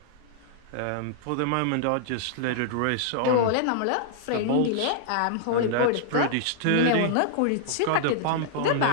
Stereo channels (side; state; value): both; different; correlation -0.01